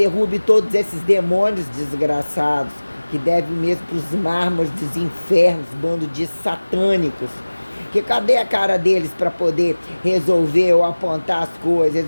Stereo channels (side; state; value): both; inverted; correlation -1.00